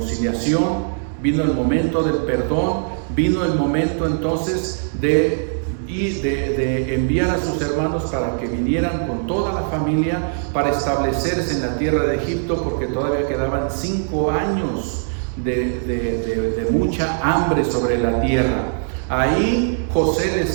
vino el momento del perdón, vino el momento entonces de y de enviar a sus hermanos para que vinieran con toda la familia para establecerse en la tierra de Egipto, porque todavía quedaban 5 años de mucha hambre sobre la tierra. Ahí José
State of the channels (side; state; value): left; silent; digital silence